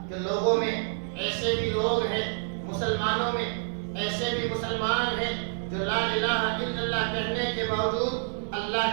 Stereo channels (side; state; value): left; silent; digital silence